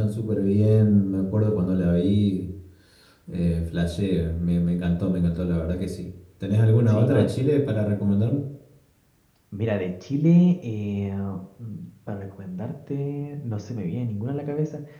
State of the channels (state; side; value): identical; both; correlation 1.00